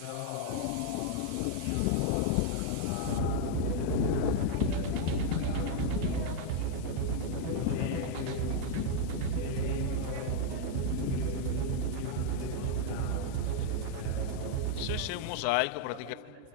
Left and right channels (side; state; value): both; different; correlation 0.00